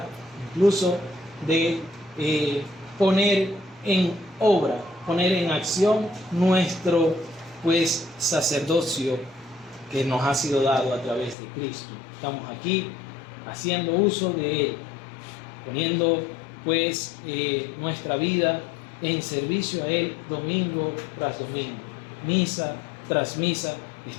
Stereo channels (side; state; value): right; drops out; at 11.4 s